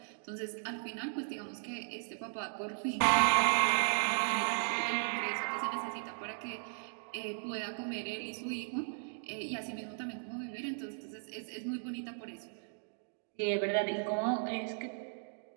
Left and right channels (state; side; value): silent; left; digital silence